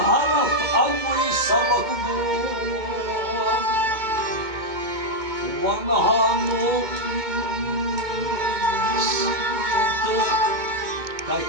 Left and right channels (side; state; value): left; late; 2.2 ms